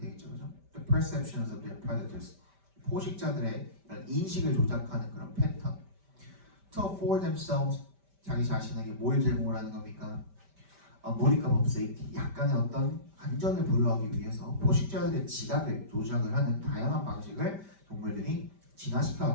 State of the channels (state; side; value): late; left; 5.1 ms